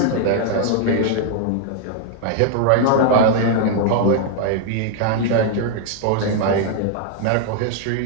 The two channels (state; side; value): different; both; correlation 0.00